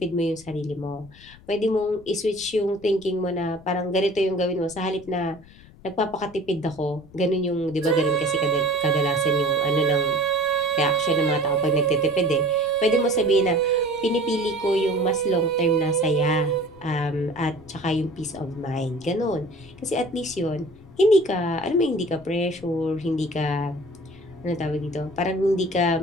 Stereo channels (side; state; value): left; noise; rumble, 23 dB below the sound